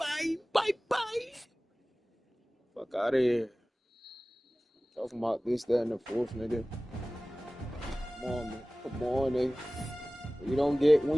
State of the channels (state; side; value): normal; both; correlation 0.98